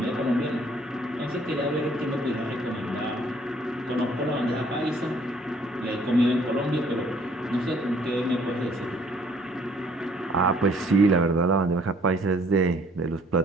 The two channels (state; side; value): normal; both; correlation 0.60